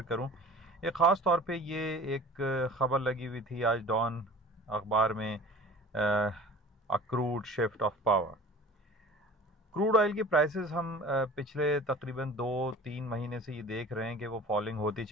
करूं। एक ख़ास तौर पे ये एक ख़बर लगी हुई थी आज डॉन अखबार में, accrued shift of power. Crude oil की प्राइसेस हम पिछले तकरीबन 2-3 महीने से ये देख रहे हैं कि वो फॉलिंग होती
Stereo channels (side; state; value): both; normal; correlation 0.42